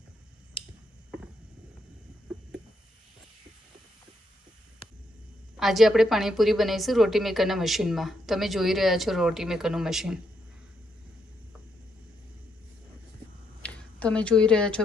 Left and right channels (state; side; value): normal; both; correlation 0.77